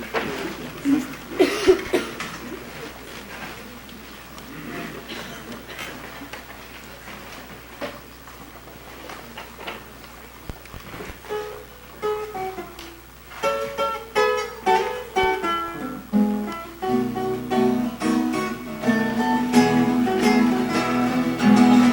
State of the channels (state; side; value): identical; both; correlation 1.00